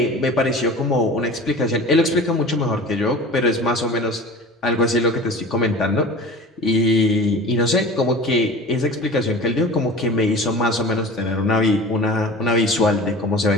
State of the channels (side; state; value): both; normal; correlation 0.38